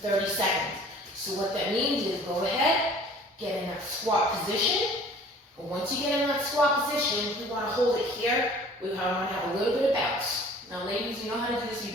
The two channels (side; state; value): both; normal; correlation 0.49